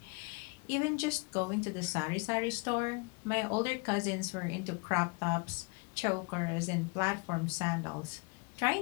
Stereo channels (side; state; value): right; quieter; 30.8 dB